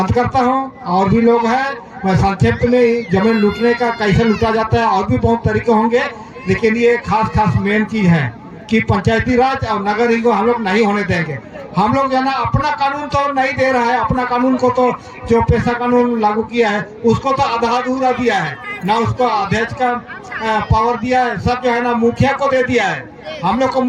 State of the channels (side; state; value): both; identical; correlation 1.00